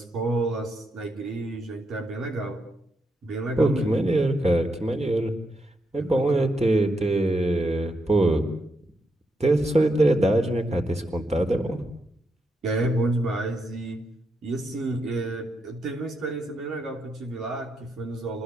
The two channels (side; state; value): both; normal; correlation 0.82